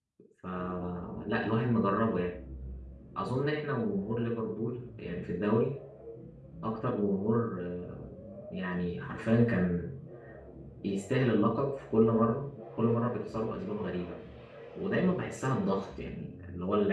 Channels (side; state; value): both; identical; correlation 1.00